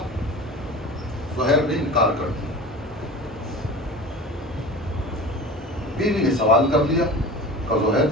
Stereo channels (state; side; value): normal; both; correlation 0.35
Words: زہیر نے انکار کر دیا. بیوی نے سوال کر لیا کہ زہیر